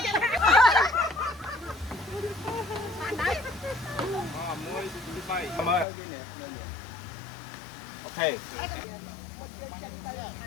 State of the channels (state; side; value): drops out; right; at 5.9 s